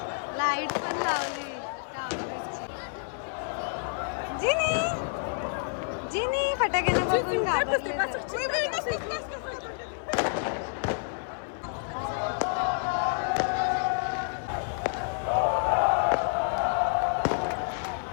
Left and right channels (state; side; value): silent; right; 59 dB below the other